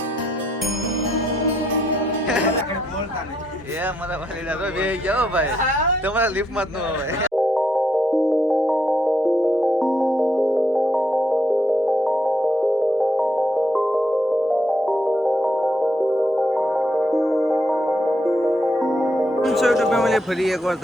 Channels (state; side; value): normal; both; correlation 0.76